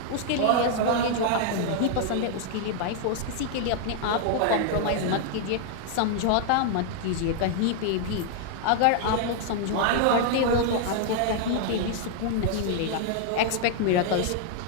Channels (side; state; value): both; different; correlation 0.00